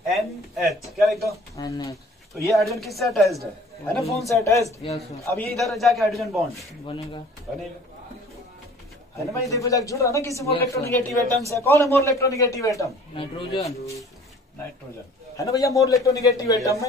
NH, क्या लिख दो? NH। तो ये हाइड्रोजन किससे अटैच्ड है ना, फोन से अटैच्ड। Yes sir. अब ये इधर जाके हाइड्रोजन बॉन्ड बनेगा। बनेगा, है ना भाई? देखो जाके जुड़ रहा ना किसी मोर Yes, sir. इलेक्ट्रोनेगेटिव एटम से। कौन है मोर इलेक्ट्रोनेगेटिव एटम? नाइट्रोजन। नाइट्रोजन है ना भैया, मोर इलेक्ट्रोनेगेटिव एटम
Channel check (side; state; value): both; normal; correlation 0.50